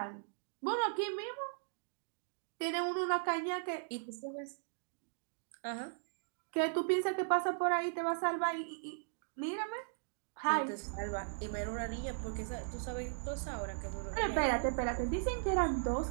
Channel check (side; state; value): left; silent; digital silence